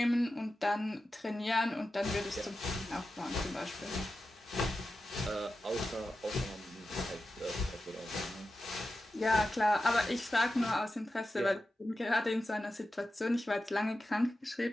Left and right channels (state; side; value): normal; both; correlation 0.92